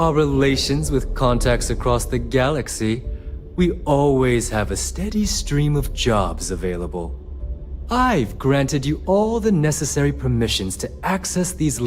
relations with contacts across the galaxy, we always have a steady stream of jobs available. I've granted you all the necessary permissions to access these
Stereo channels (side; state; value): both; identical; correlation 1.00